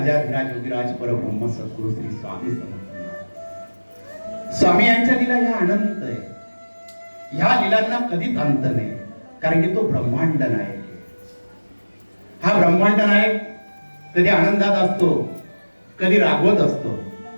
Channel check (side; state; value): both; inverted; correlation -1.00